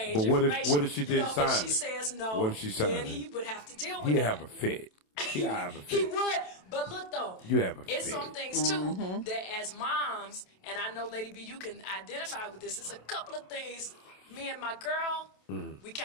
but information. What if she didn't sign if she it? says no, what if she signed then he would have to deal with it. He'd have a fit. He would. But look though, it's some things too that as moms, and I know Lady B, you can identify with this. It's a couple of things. Me and my girl, we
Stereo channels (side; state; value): right; late; 27 ms